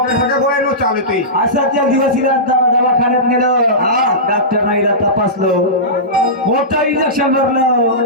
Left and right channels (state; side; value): normal; both; correlation -0.18